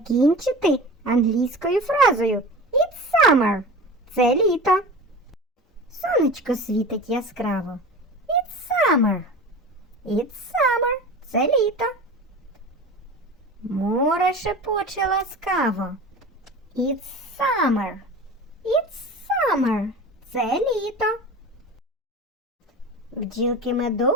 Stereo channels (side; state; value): both; normal; correlation 0.34